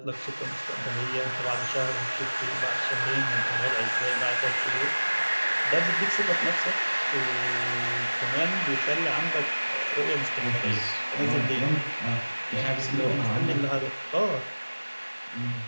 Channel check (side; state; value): both; inverted; correlation -1.00